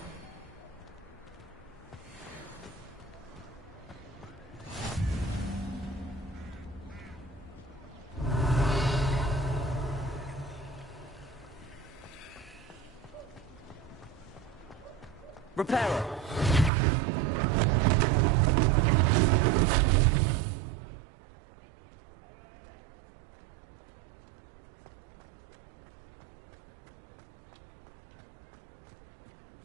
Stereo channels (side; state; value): left; drops out; at 16.7 s